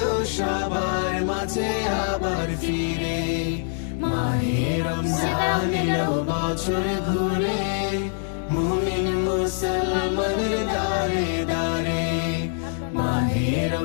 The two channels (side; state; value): right; silent; digital silence